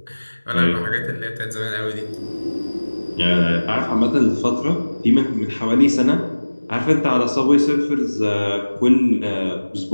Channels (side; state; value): both; inverted; correlation -1.00